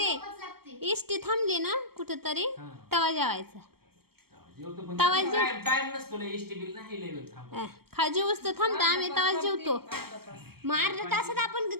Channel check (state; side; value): late; left; 0.95 ms